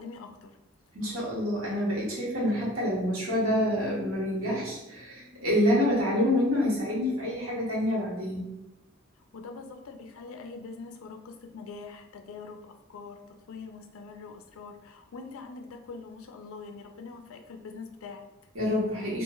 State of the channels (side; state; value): both; normal; correlation 0.47